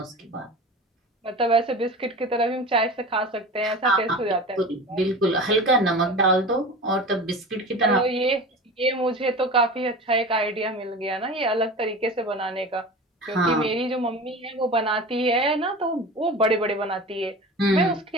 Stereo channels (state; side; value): normal; both; correlation 0.33